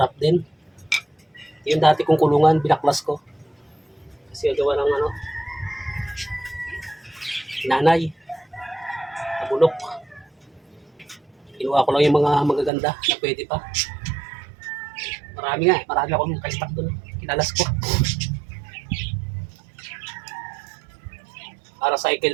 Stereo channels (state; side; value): drops out; left; at 12.7 s